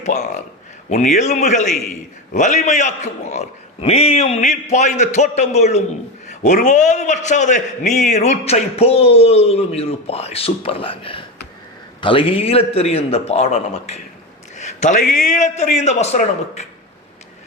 உன் எலும்புகளை வலிமையாக்குவார். நீயும் நீர் பாய்ந்த தோட்டம் போலும் ஒருபோது வற்றாத நீர் ஊற்றை போலும் இருப்பாய். சூப்பர்லாங்க. தலைகீழ தெரியும் இந்த பாடம் நமக்கு, தலைகீழ தெரியும் இந்த வசனம் நமக்கு.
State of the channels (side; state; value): both; normal; correlation 0.19